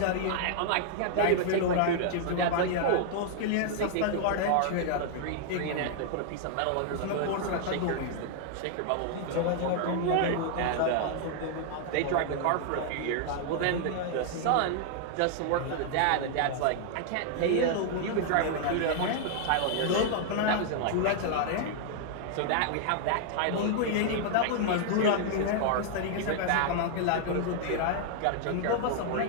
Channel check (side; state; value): both; different; correlation -0.01